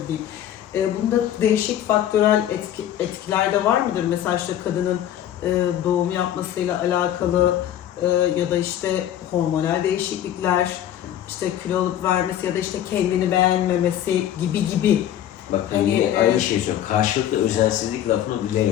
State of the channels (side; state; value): right; quieter; 11.3 dB